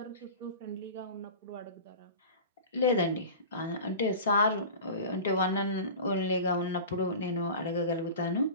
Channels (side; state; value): both; inverted; correlation -0.34